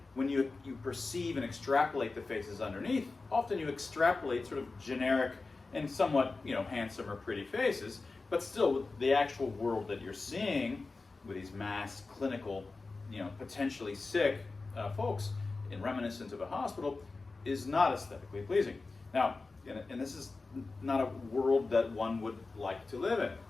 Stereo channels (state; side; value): quieter; right; 3.8 dB